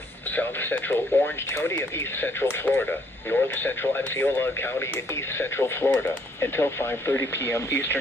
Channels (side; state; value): both; normal; correlation 0.67